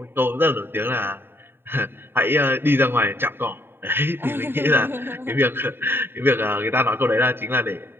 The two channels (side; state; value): left; late; 0.11 ms